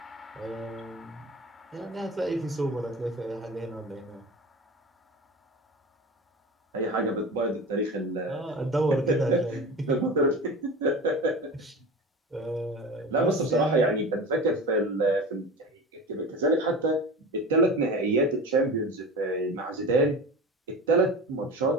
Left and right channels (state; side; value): normal; both; correlation 0.31